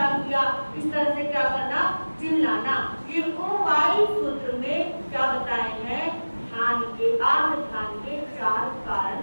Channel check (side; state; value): both; inverted; correlation -1.00